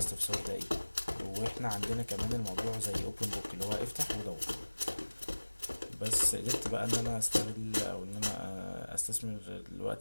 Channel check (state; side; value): inverted; both; correlation -1.00